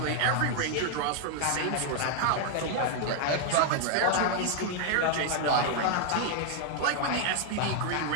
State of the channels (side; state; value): both; different; correlation 0.00